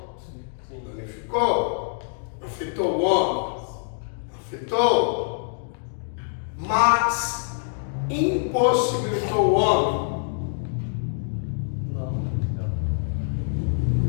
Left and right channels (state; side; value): silent; right; digital silence